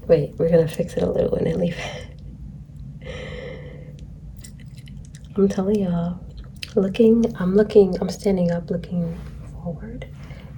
Wait, we're gonna fix it a little and then leave it. I'm telling y'all, I'm standing up looking forward.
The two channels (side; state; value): both; identical; correlation 1.00